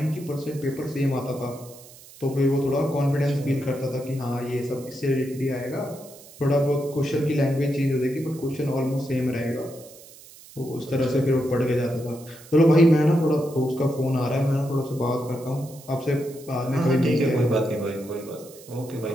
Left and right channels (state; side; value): noise; right; hiss, 20 dB below the sound